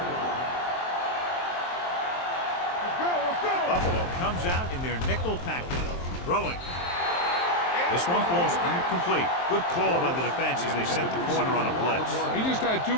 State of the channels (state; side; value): late; right; 23 ms